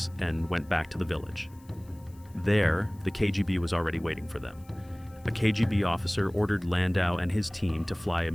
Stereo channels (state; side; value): noise; left; hiss, 29 dB below the sound